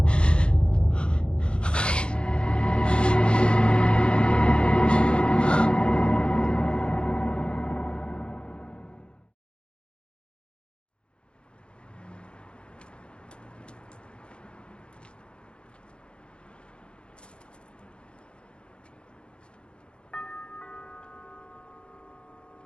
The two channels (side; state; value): right; late; 0.056 ms